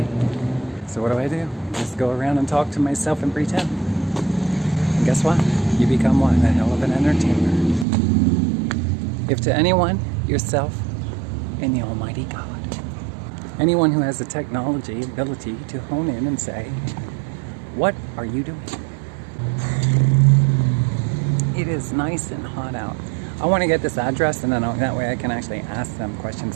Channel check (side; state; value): left; drops out; at 7.9 s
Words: So what do? Just go around and talk to myself and pretend. And guess what? You become what? A hell of an entertainer. If to anyone, yourself, and the Almighty God. Anyone who has the technology ability to hone in and say, what are you doing? It is nice and hot out. I want to get this address, and then that way I can actually ask them